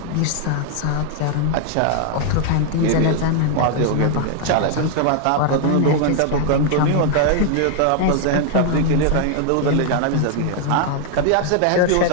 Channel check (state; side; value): different; both; correlation 0.00